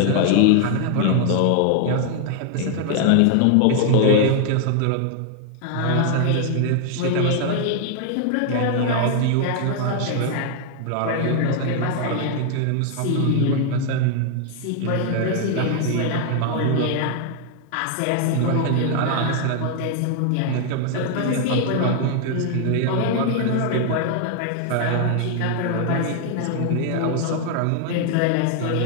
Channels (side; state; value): both; different; correlation 0.00